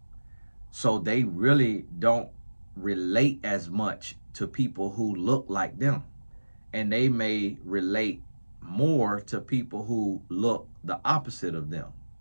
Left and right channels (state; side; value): inverted; both; correlation -1.00